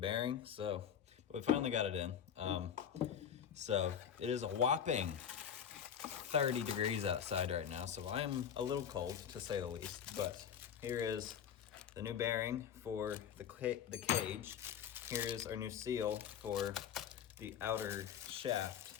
So we finally got it in. So it is a whopping 30 degrees outside right now, so I am a little cold to say the least. But here is the new bearing for the cage. Here is our new seal for the outer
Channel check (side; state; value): right; quieter; 8.5 dB